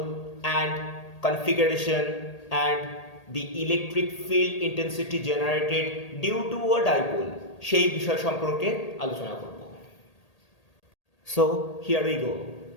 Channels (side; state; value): right; late; 1.8 ms